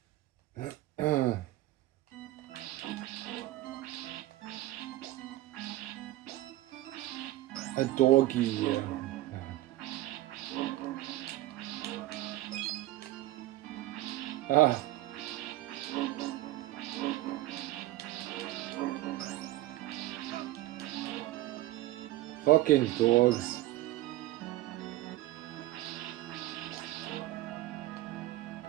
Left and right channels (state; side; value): quieter; left; 16.2 dB